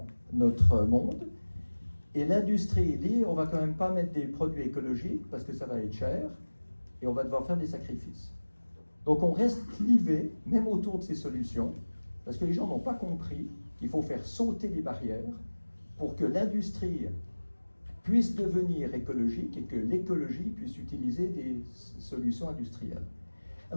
notre monde. Et l'industrie dit on ne va quand même pas mettre des produits écologiques parce que ça va être cher et on va devoir faire des sacrifices. Donc on reste clivé, même autour de ces solutions, parce que les gens n'ont pas compris qu'il faut faire sauter les barrières pour que l'industrie puisse devenir écologique et que l'écologie puisse utiliser des solutions industrielles.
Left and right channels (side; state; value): both; inverted; correlation -1.00